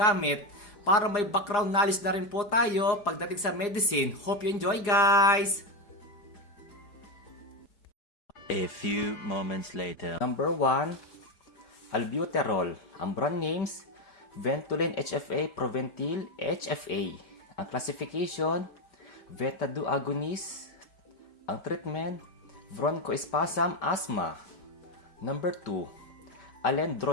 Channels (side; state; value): right; late; 4.9 ms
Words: para may background knowledge na rin po tayo pagdating sa medicine. Hope you enjoy guys! A few moments later. Number 1, albuterol. Ang brand names, Ventolin HFA, Proventil HFA. Ang classification, Beta-2 agonist. Ang treatment, bronchospasm, asthma. Number 2,